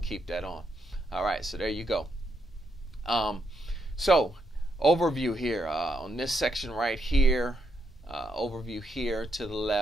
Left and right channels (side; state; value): both; normal; correlation 0.79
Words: keep that on. All right, so there you go. So overview here on this section right here, overview here to the